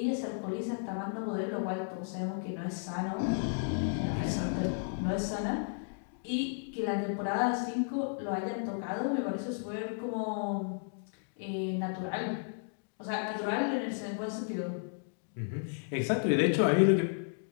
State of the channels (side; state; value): right; silent; digital silence